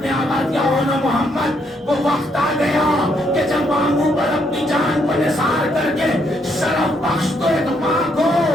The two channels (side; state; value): both; normal; correlation 0.74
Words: نے آواز دیا اونا محمد, وہ وقت آ گیا کہ جب ماموں پر اپنی جان کو نثار کر کے شرف بخش تو ایک ماں کو.